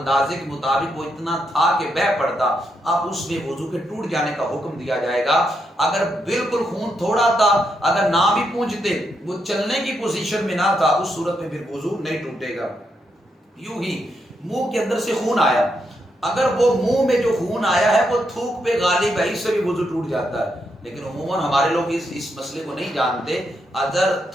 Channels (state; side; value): normal; both; correlation 0.81